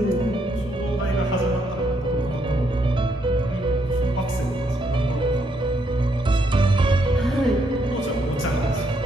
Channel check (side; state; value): both; normal; correlation 0.75